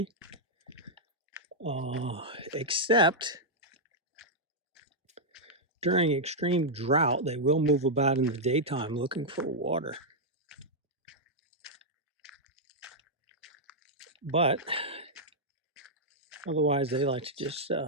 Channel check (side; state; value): both; normal; correlation -0.06